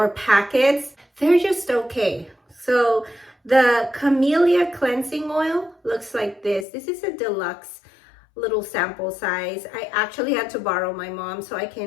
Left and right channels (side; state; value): right; drops out; at 6.7 s